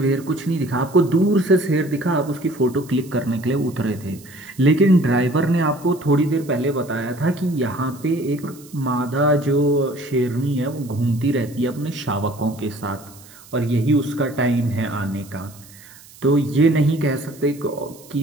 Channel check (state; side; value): noise; right; hiss, 22 dB below the sound